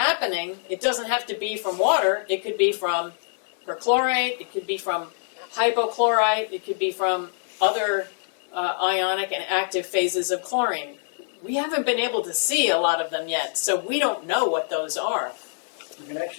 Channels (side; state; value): right; silent; digital silence